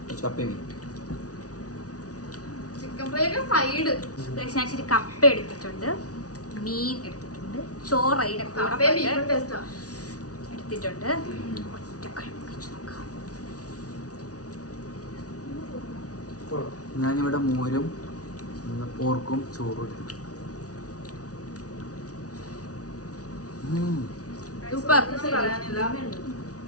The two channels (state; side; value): late; right; 0.68 ms